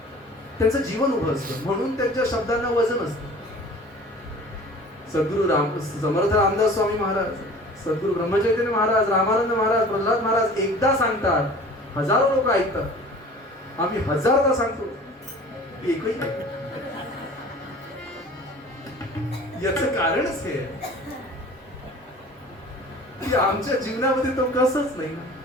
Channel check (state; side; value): normal; both; correlation 0.44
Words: त्यांचं जीवन उभं असतं, म्हणून त्यांच्या शब्दांना वजन असतं. सद्गुरू समर्थ रामदास स्वामी महाराज, सद्गुरू ब्रह्मचैतन्य महाराज, रामानंद महाराज, प्रल्हाद महाराज एकदा सांगतात, हजारो लोक ऐकतात. आम्ही हजारदा सांगतो, एकही नाही. याचं कारणच हे आहे की आमच्या जीवनामध्ये तो कसंच नाही.